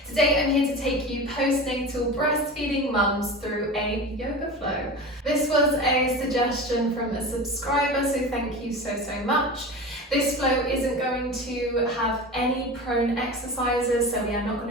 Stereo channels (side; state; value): both; normal; correlation 0.30